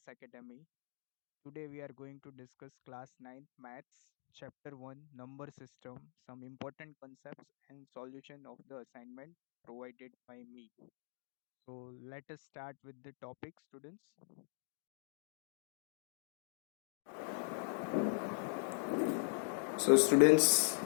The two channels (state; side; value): silent; right; digital silence